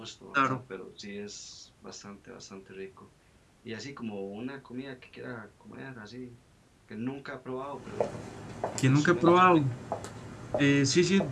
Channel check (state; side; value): identical; both; correlation 1.00